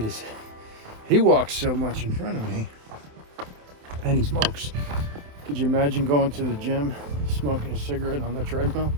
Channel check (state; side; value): late; left; 27 ms